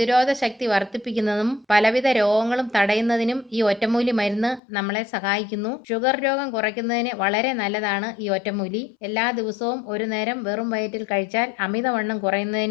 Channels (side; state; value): right; drops out; at 4.6 s